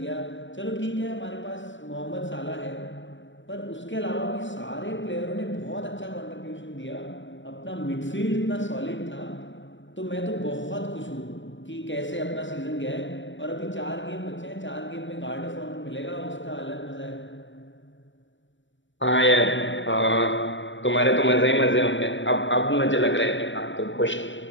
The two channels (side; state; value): right; late; 0.54 ms